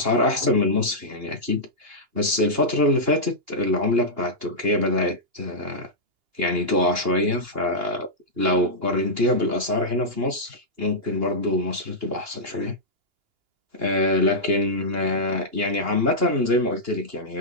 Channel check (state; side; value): late; left; 2.8 ms